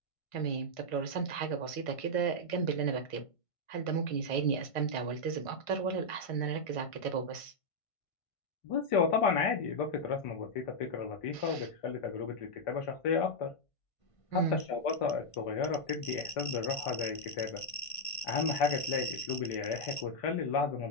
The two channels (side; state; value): right; late; 1.5 ms